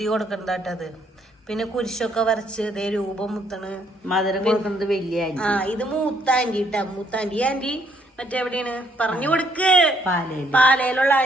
കൊടുക്കണ്ടത്. പിന്നെ കുരിശൊക്കെ വരച്ച് ഇതേ രൂപം മുത്തണ്. മധുരം കൊടുക്കുന്നത് വലിയ ആ ഇത് മൂത്ത ആന്റി ഇട്ടാ. മൂത്ത ആന്റി മറ്റെവിടെയാണ് പറഞ്ഞു കൊടുക്ക്. പാലയിലുള്ള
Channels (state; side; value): normal; both; correlation 0.68